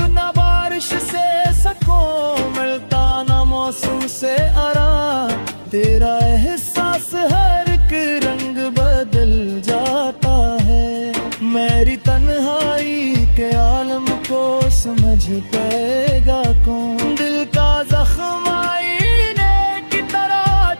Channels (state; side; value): inverted; both; correlation -1.00